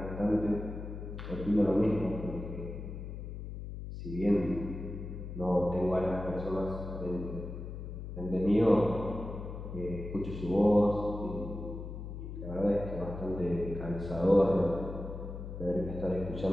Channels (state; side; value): noise; left; hum, 8 dB below the sound